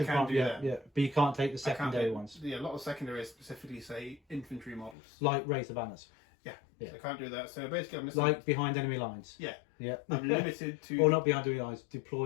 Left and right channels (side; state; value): right; drops out; at 5.0 s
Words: primary. Yeah. But you can't take the secondary ones. Yeah, a lot of secondaries specifically say infantry models. Like Raise the Banners. Yeah. So I can't do that. So basically, I'm missing. Like behind enemy lines. Yeah. I'm limited to. Or not behind enemy lines.